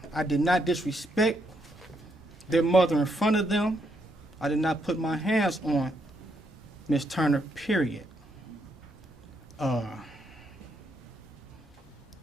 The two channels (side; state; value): both; normal; correlation 0.76